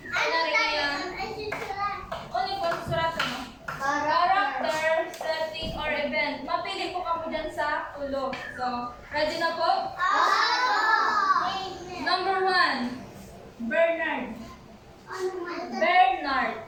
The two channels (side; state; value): both; identical; correlation 1.00